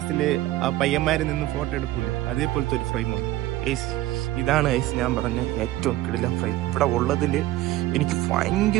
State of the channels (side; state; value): left; quieter; 15.7 dB